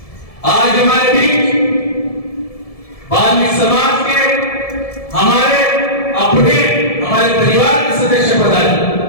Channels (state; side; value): late; right; 1.7 ms